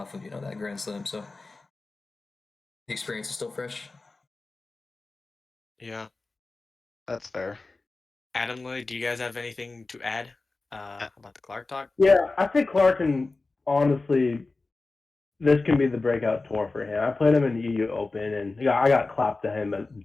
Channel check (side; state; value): right; quieter; 3.5 dB